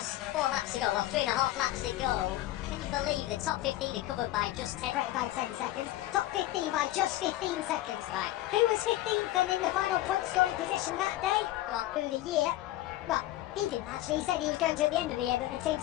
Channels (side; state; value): right; quieter; 15.5 dB